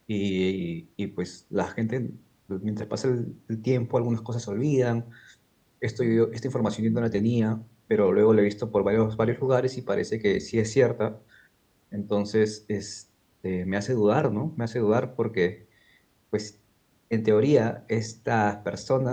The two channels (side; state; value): both; identical; correlation 1.00